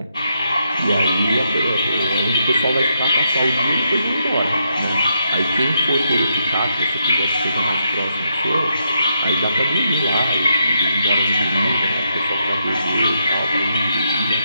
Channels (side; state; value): both; inverted; correlation -0.79